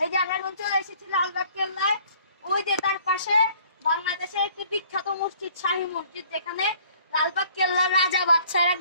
যে আমরা এখন চলে এসেছি লালবাগ কেল্লায়। ওই যে তার পাশে বাংলাদেশের একটি বিখ্যাত মসজিদ, শাহী মসজিদ, যেখানে লালবাগ কেল্লার রাজা বাদশারা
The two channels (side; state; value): both; inverted; correlation -0.56